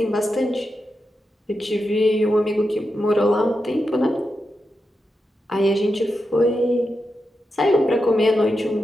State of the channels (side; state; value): both; normal; correlation 0.88